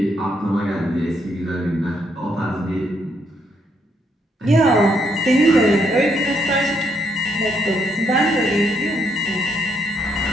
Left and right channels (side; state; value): both; normal; correlation 0.75